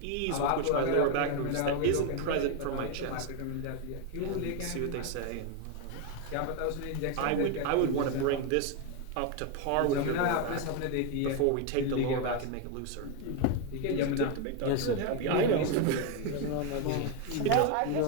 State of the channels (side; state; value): both; different; correlation 0.02